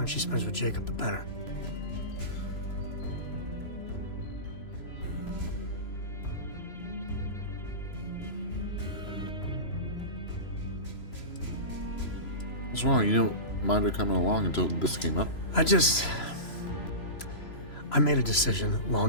she spends with Jacob, the better. What's wrong? You don't mind her coming along until this came up? I made a decision a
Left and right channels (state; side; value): late; right; 3.0 ms